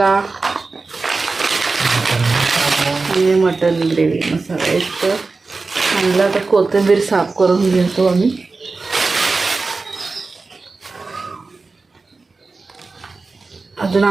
आणि मटन ग्रेव्ही मसाला. एक आणला तर कोथिंबीर साफ करून घेतो आम्ही. अजून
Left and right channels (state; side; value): quieter; left; 3.9 dB